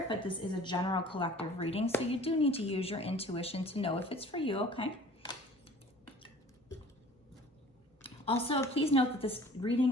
but this is a general collective reading. So you do need to use your intuition to know if it's for you, okay? Also, please note that this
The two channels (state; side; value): normal; both; correlation 0.47